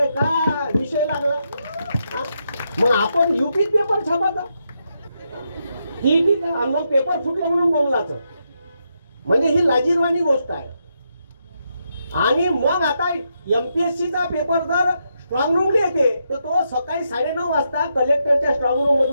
का विषय लागला, मग आपण युपीत पेपर छापायचा, टीईटीचा, आणि मग पेपर फुटले म्हणून बोमलाचं, म्हणजे ही लाजीरवाणी गोष्ट आहे. आणि मग आता एमपीएससीचा पेपर जर स्ट्रॉंग रूमला येते तर तो सकाळी 9:30 वाजता कलेक्टरच्या स्ट्रॉंग रूम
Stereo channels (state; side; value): inverted; both; correlation -0.82